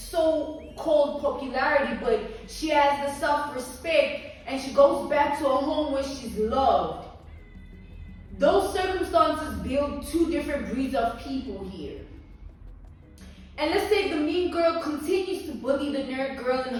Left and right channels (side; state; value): both; identical; correlation 1.00